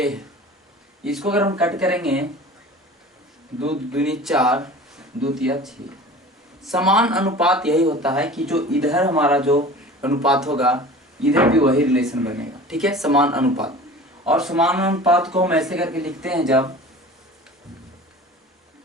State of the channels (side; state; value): both; normal; correlation 0.40